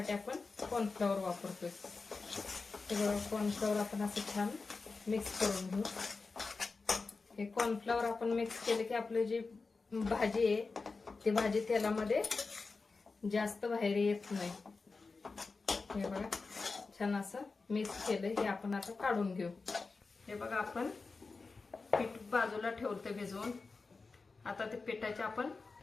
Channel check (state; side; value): quieter; right; 4.1 dB